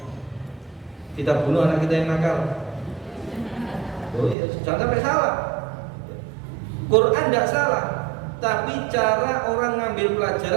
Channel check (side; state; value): left; drops out; at 4.4 s